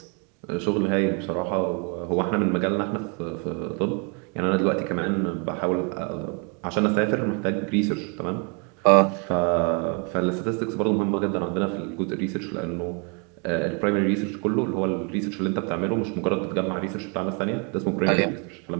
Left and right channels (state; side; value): quieter; left; 35.3 dB